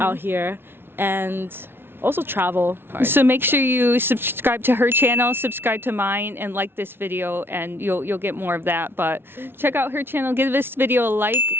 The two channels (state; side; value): late; left; 0.11 ms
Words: out here, and also travel. So make sure you subscribe to her channel, subscribe to mine, and like this video, and you'll get more of that. But check out her channel, give this video a like,